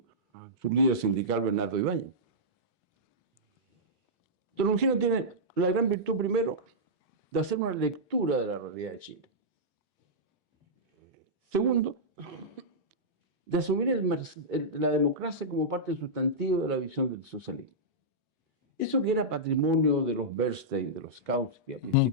su líder sindical Bernardo Ibáñez. Don Eugenio tiene la gran virtud, primero, de hacer una lectura de la realidad de Chile. Segundo, de asumir la democracia como parte sustantiva de la visión del socialismo. Eso que era patrimonio de los Bernstein, de los Kautsky, a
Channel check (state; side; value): normal; both; correlation -0.13